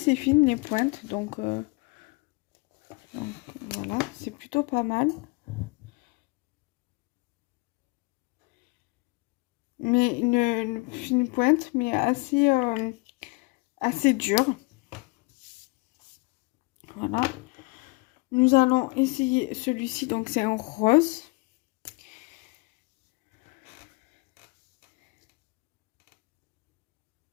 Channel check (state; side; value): quieter; right; 27.8 dB